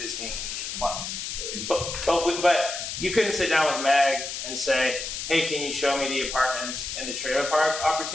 clients. But you couldn't sit down with Meg and say, hey, can you show me the apartments and the trailer park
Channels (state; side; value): noise; left; hiss, 5 dB below the sound